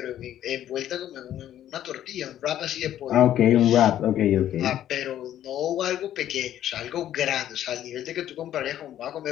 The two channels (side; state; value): right; quieter; 11.7 dB